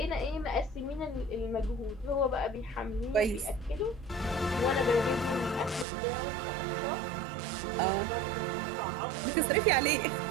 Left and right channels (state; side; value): drops out; left; at 5.9 s